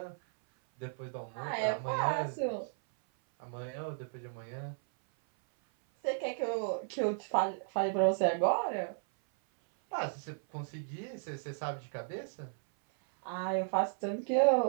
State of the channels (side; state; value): left; silent; 55 dB below the other